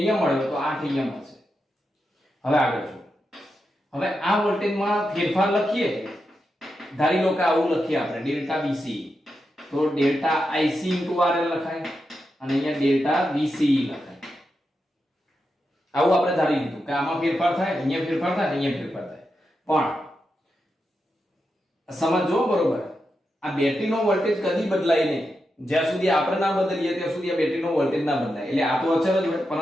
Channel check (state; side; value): normal; both; correlation 0.87